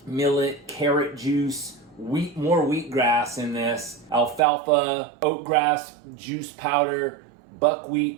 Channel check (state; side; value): drops out; left; at 4.4 s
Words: millet, carrot juice, more wheatgrass in this, alfalfa, oatgrass juice powder,